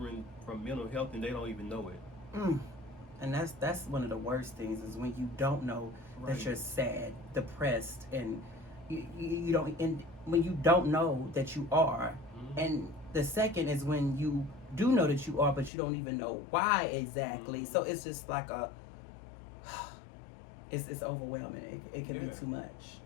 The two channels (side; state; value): right; drops out; at 15.7 s